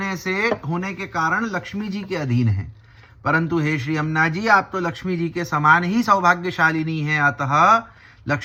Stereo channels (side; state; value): both; identical; correlation 1.00